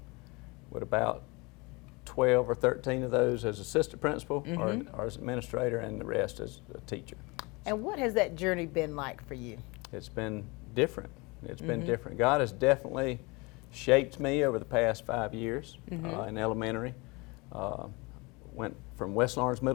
with about 12 or 13 of those as assistant principal or as administrator, and the rest as a teacher. And what has that journey been like for you? It's been different. It's been different. God has definitely shaped me over the past 5 years in elementary. Went from West Lawrence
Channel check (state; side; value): quieter; right; 26.5 dB